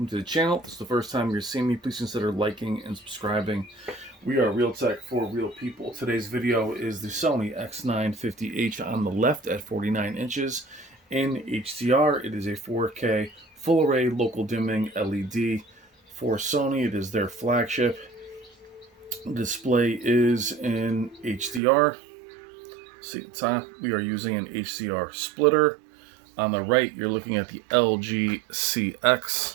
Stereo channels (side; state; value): left; drops out; at 21.6 s